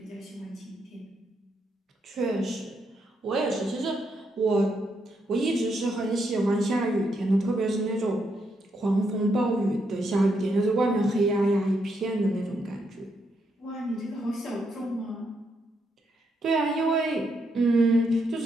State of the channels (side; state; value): both; normal; correlation 0.79